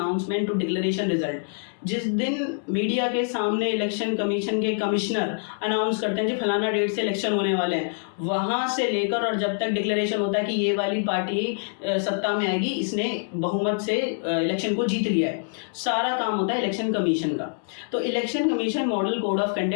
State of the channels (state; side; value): silent; right; 62 dB below the other